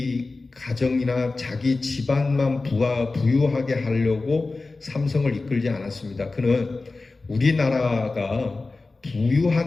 가정이나 자기 집안만 부유하게 하려고 삼성을 이끌지 않았습니다. 그는 우리나라가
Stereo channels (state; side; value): quieter; right; 3.5 dB